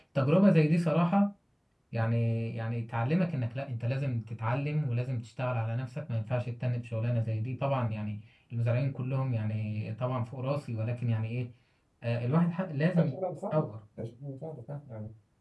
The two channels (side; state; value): both; identical; correlation 1.00